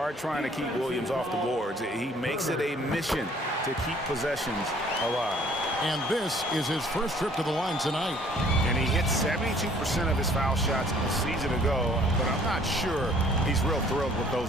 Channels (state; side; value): normal; both; correlation 0.57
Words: trying to keep Williams off the boards. He makes it a mission to keep possessions alive. And this is his first trip to the line tonight. And he hit 72% of his foul shots a season ago, but I'm not sure he's real thrilled with